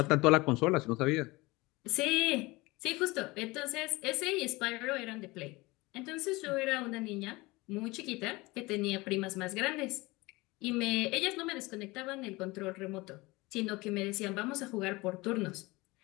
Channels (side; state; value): right; quieter; 22.4 dB